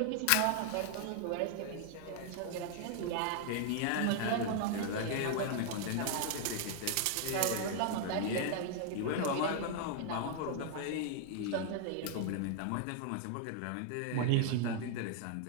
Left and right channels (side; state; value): both; different; correlation 0.00